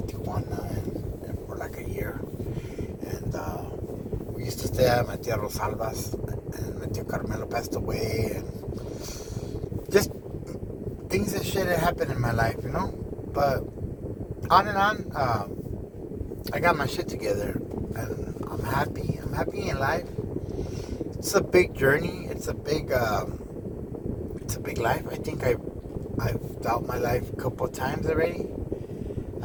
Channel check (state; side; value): identical; both; correlation 1.00